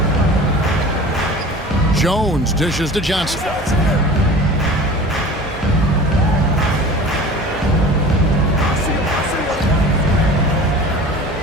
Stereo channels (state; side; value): normal; both; correlation 0.40